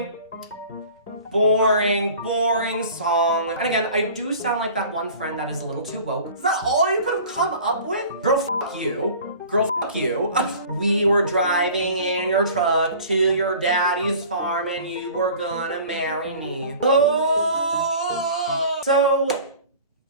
song. And again, I do sound like that one friend that is a little too woke. Is that all you could have come up with? Girl, fuck you. Girl, fuck you. We were driving in your truck to your daddy's farm and you were gonna marry me. Oh! So,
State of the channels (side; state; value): both; inverted; correlation -0.44